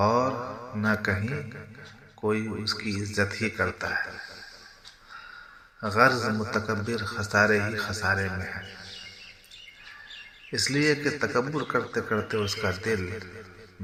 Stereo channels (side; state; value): both; identical; correlation 1.00